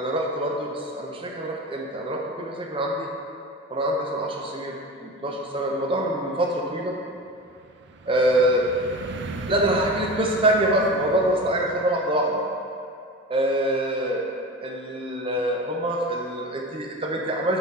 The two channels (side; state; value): both; normal; correlation 0.30